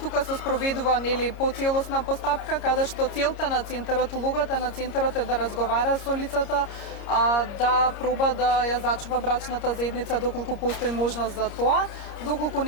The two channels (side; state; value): right; late; 30 ms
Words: се спроведува нели поцелосна постапка каде што целта на центарот, улогата на центарот е да разговара со лицата, да проба да ја зачува брачната заедница доколку постои можност за тоа, доколку